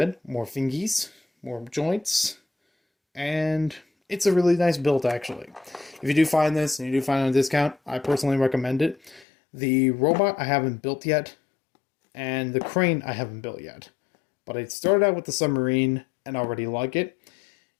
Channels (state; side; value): drops out; right; at 9.2 s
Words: more fingies, more joints, and it's a really nice build actually. If you do find this and you do find it on a discount, I personally recommend it. The robot I haven't built yet, and the crane I haven't built yet. But I started out with the submarine and already like it.